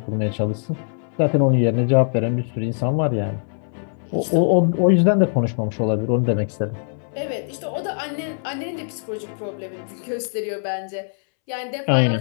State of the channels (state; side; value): silent; right; 64 dB below the other